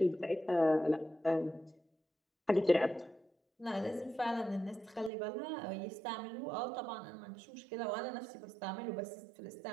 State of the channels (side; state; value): left; drops out; at 5.1 s